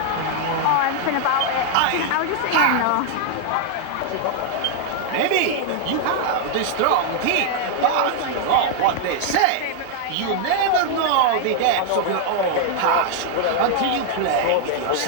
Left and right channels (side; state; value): both; different; correlation 0.00